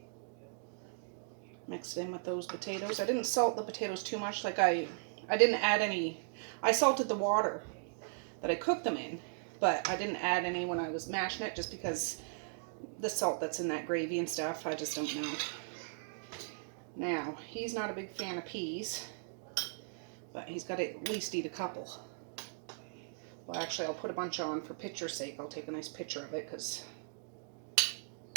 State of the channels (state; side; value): silent; left; digital silence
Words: Mix it in with those potatoes. I didn't salt the potatoes too much. Like I didn't add any. I salted the water that I cooked them in, but I didn't add any when I was mashing it just because the salt that's in that gravy and stuff, I just don't know. Now, he's not a big fan of peas, but he's got to at least eat a couple. Well, actually, I'll put a bunch on for picture's sake. I'll take a nice picture of it because